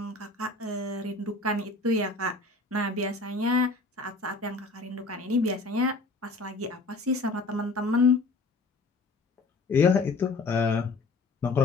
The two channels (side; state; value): right; quieter; 3.6 dB